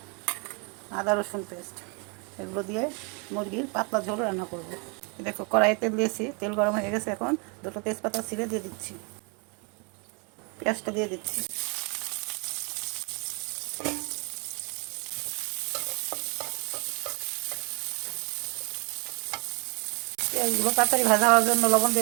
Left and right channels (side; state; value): left; quieter; 34.2 dB